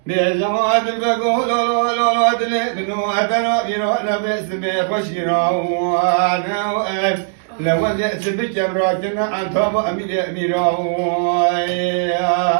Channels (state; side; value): silent; left; digital silence